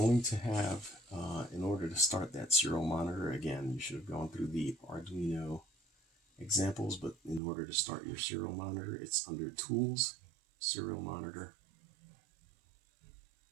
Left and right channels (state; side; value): drops out; left; at 7.4 s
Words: to have in order to start that serial monitor, again, you should have gone through the Arduino examples, but in order to start your serial monitor, it's under Tools, Serial Monitor,